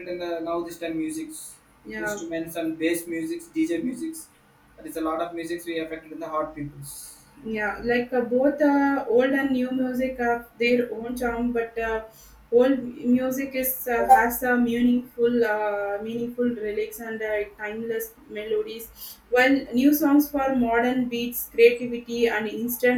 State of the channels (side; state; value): both; identical; correlation 1.00